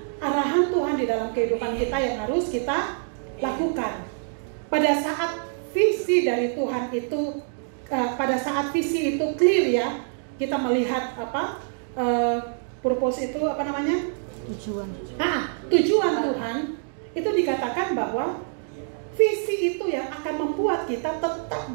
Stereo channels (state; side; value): silent; left; digital silence